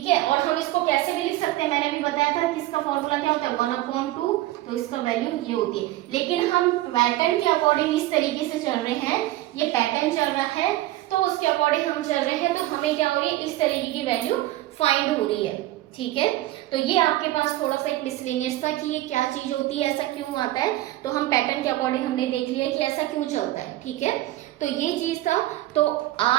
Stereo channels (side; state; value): left; quieter; 16.3 dB